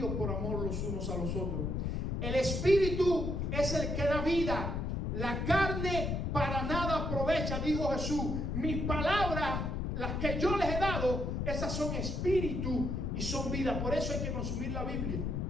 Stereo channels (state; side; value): noise; left; rumble, 1 dB below the sound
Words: por amor los unos a los otros. El espíritu es el que da vida, la carne para nada aprovecha, dijo Jesús. Mis palabras, las que yo les he dado, esas son espíritu y son vida. Por eso hay que consumir la Biblia,